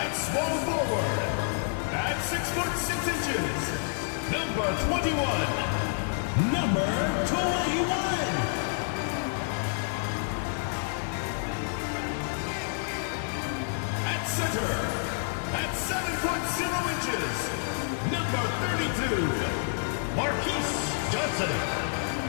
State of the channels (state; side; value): silent; right; 59 dB below the other